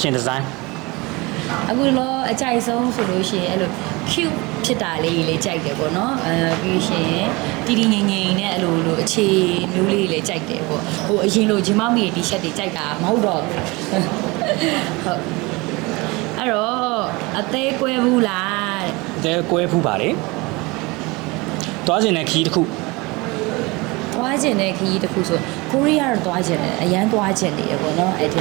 design အခုတော့အကြိုက်ဆုံးဆိုလို့ရှိရင်အဲ့လို cute ဖြစ်တာလေးလေးကြိုက်တယ်ပေါ့နော်ပြီးရှင်တီတီငိမ့်ငိမ့်နဲ့အဲ့လိုအခြေမျိုးလေးလေးကြိုက်တယ်ပေါ့ဟိုအရင်လိုဂျင်မောက်မီတီရှပ်တွေကြိုက်တာမဟုတ်တော့ဟုတ်အဲ့တော့အသေးကွဲဘူးလားတဲ့ တဲကွဲဖူးပါလေတွားကျင်တဲ့ခီးတစ်ခု သွားကျင်တဲ့ခရီးတစ်ခုဆိုကိုရီးယားတော့သွားကျင်တယ်အရန်သွားကျင်နေရပေါ့နော်အဲ့ဒီ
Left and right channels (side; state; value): left; quieter; 24.5 dB